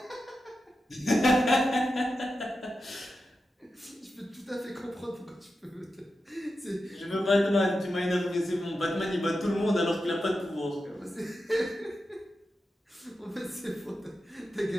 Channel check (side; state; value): both; normal; correlation 0.90